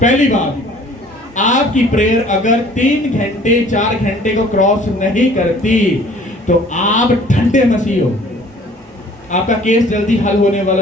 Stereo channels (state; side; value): normal; both; correlation 0.53